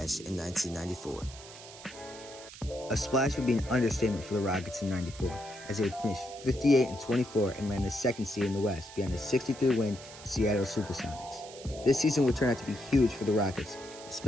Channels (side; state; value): right; noise; hiss, 16 dB below the sound